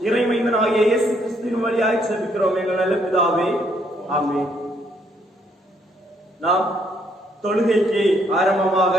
இறைமைந்தனாகிய இயேசு கிறிஸ்துவின் வழியாய் செபிக்கிறோம் எங்கள் நல்ல பிதாவே, ஆமென். நாம் தொழுகைக்கு ஆரம்பமாக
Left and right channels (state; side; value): normal; both; correlation 0.70